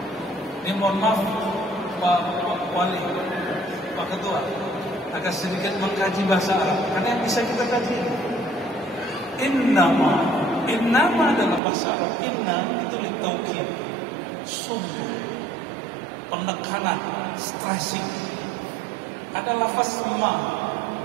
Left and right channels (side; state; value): left; drops out; at 11.6 s